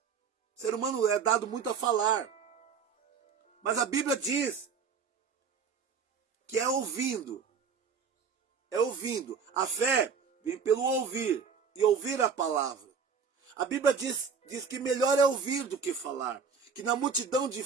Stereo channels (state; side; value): quieter; left; 6.0 dB